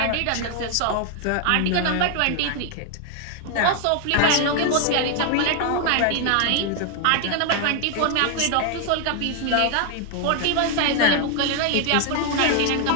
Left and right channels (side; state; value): both; different; correlation 0.00